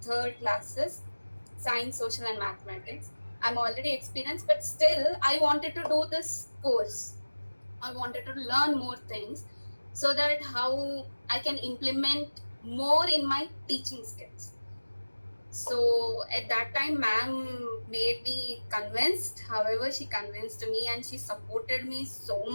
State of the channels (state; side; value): inverted; both; correlation -1.00